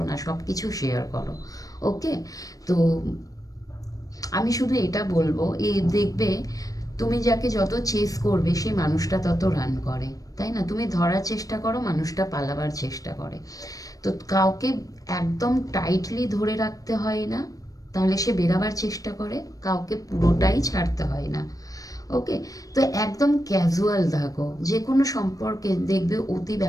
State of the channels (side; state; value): right; late; 0.17 ms